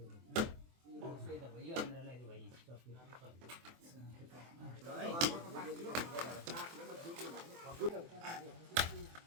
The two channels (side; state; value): left; late; 24 ms